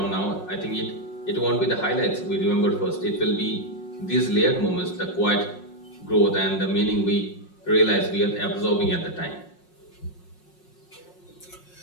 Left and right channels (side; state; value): right; late; 5.5 ms